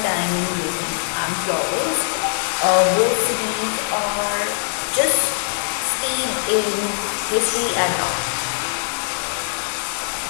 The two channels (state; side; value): silent; right; 65 dB below the other